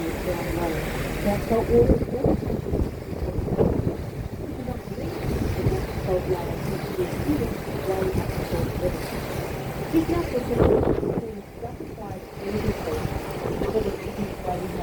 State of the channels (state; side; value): identical; both; correlation 1.00